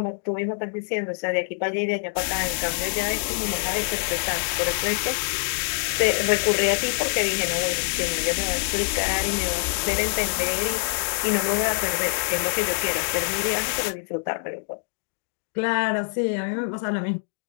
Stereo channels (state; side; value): silent; right; digital silence